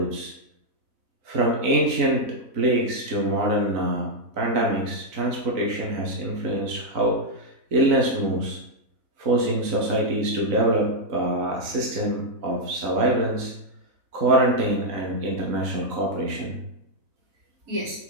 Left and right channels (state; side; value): late; left; 3.9 ms